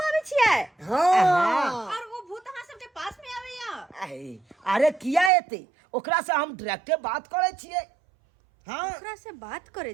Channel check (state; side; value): drops out; left; at 5.3 s